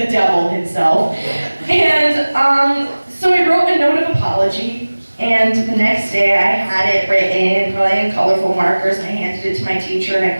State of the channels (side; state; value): both; inverted; correlation -1.00